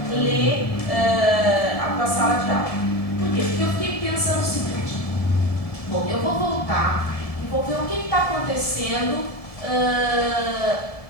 ler a tua sala de aula. Por quê? Porque eu fiquei pensando o seguinte, bom, eu vou voltar e vou ver o que está acontecendo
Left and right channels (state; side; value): late; right; 1.7 ms